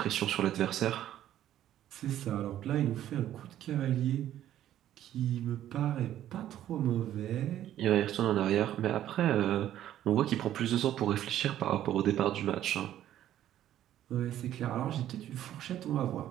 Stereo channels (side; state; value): left; quieter; 12.0 dB